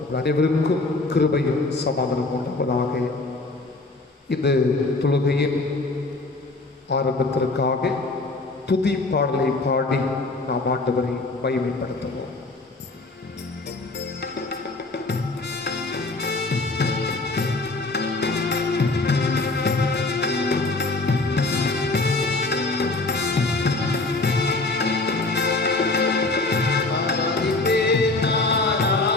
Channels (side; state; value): right; quieter; 3.2 dB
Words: அனைவருக்கும் கிருபையும் சமாதானம் உண்டாவதாக. இந்த தொழுகையின் ஆரம்பத்திற்காக துதி பாடலை பாடி நாம் ஆண்டவரை மகிமைப்படுத்துவோம்.